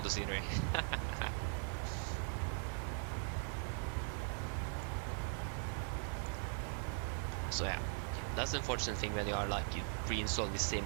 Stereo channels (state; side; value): silent; left; 51 dB below the other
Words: scenery. So yeah, that's the unfortunate thing when you are like you reinstall the